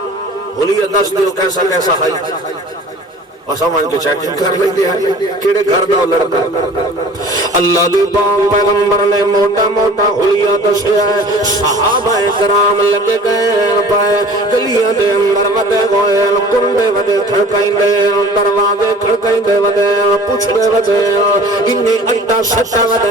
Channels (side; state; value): both; normal; correlation 0.45